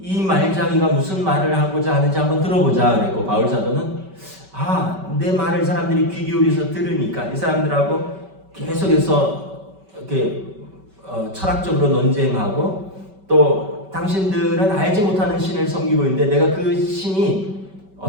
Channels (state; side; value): late; left; 5.2 ms